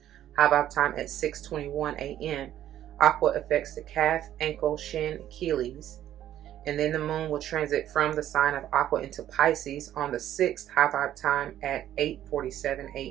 high vibe time at 6:21 AM. Aqua affects the calf, ankle, shin, Achilles. And then the moon will transit from the sign of Aqua into Pisces on the 6th, high vibe time at 8:47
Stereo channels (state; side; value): quieter; left; 11.8 dB